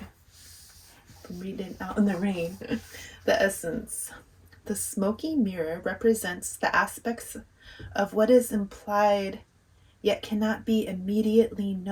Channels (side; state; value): both; identical; correlation 1.00